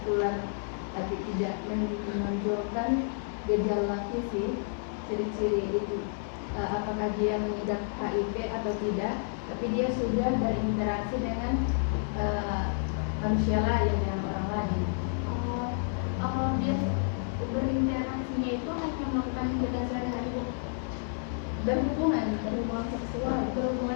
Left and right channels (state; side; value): silent; right; digital silence